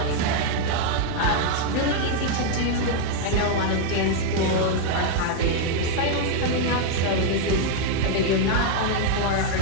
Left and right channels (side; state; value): both; different; correlation 0.00